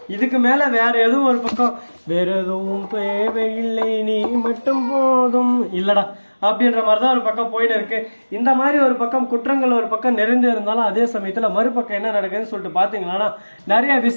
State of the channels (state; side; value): inverted; both; correlation -1.00